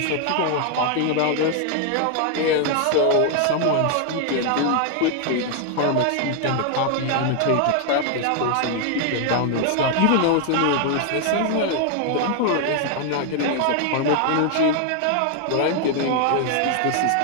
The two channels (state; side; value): different; both; correlation 0.00